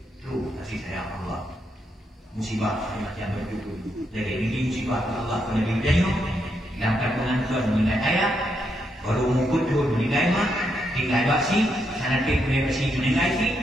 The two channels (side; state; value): both; normal; correlation 0.80